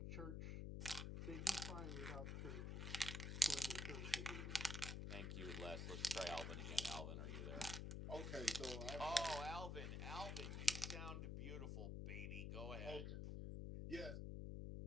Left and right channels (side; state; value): left; noise; hum, 2 dB below the sound